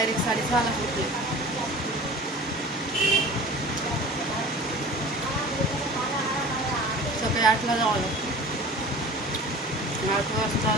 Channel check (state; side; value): normal; both; correlation 0.40